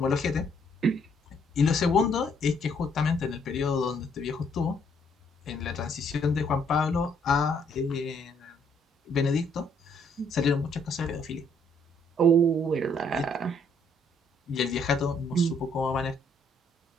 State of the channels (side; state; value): both; normal; correlation 0.67